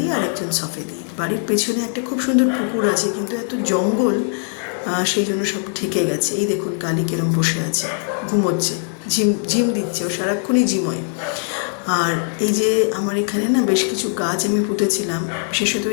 আর একজন সফেদি। বাড়ির পেছনে একটা খুব সুন্দর পুকুর আছে, কিন্তু এত জঙ্গল, সেই জন্য সব ঠেকে গেছে। এই দেখুন কালি কেরম বসে আছে, ঘুমোচ্ছে, ঝিম দিচ্ছে, ও সারাক্ষণই ঝিমোয়। আর এই যে আমার এখানে না বেশ কিছু গাছ আমি পুঁতেছিলাম, বিশেষত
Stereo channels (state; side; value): silent; right; 61 dB below the other